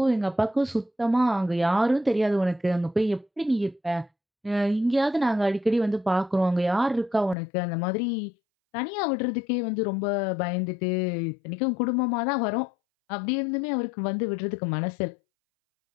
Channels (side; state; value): right; drops out; at 7.4 s